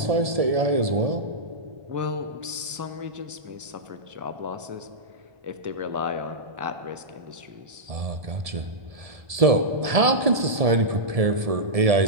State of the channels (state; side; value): late; left; 1.7 ms